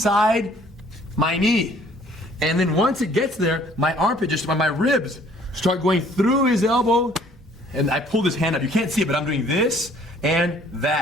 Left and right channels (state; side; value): normal; both; correlation 0.58